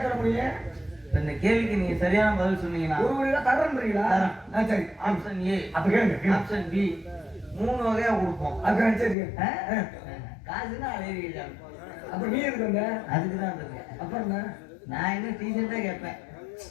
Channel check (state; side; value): drops out; right; at 9.2 s